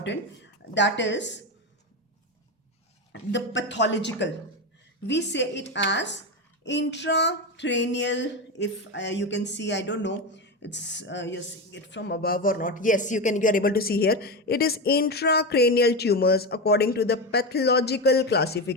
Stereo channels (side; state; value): both; normal; correlation 0.16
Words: that is the pathological. We say it as intracranial. If you can see, I don't know, it's you're seeing it from above or not. Yes, you are able to see here. It is intracranial tumors according to the pathological